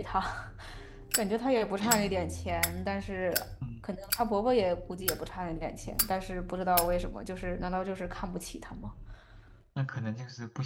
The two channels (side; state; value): both; identical; correlation 1.00